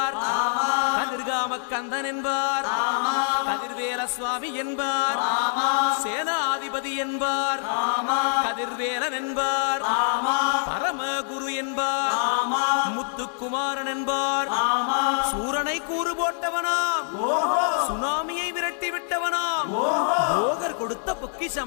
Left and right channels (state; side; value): silent; right; digital silence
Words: கதிர்காம கந்தன் என்பார், கதிர்வேல சுவாமி என்பார், சேனாதிபதி என்பார், கதிர்வேலன் என்பார், பரமகுரு என்பார், முத்துக்குமாரன் என்பார், சூரனை கூறு போட்டவனாம், சுனாமியை விரட்டி விட்டவனாம், போகர் கொடுத்த